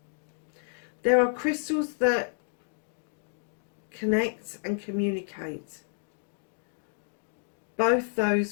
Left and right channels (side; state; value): right; silent; digital silence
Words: There are crystals that connect and communicate, both